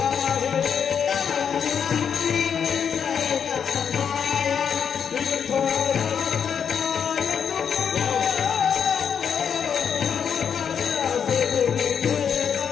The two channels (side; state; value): right; quieter; 7.4 dB